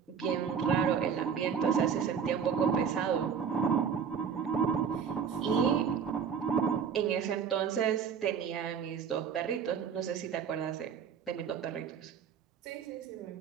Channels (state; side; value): quieter; left; 6.9 dB